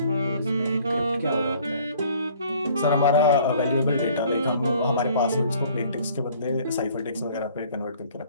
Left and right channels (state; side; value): inverted; both; correlation -0.55